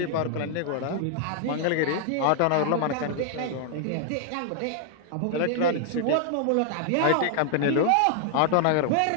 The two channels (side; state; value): both; different; correlation 0.00